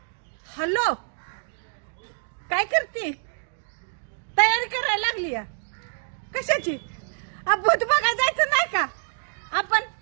हॅलो, काय करते? तयारी करायला लागली या कशाची? भूत बघायला जायचं नाही का आपण?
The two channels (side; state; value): left; silent; digital silence